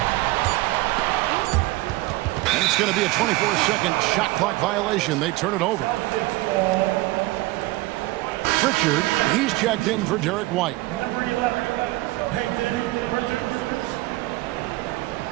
And it's going to be a 24-second shot clock violation. They turn it over. Pritchard, he's checked in for Derek White. Number 11, Peyton Pritchard.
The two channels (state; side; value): quieter; left; 19.9 dB